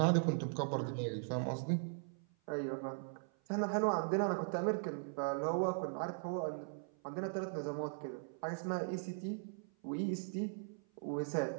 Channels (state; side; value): silent; left; 52 dB below the other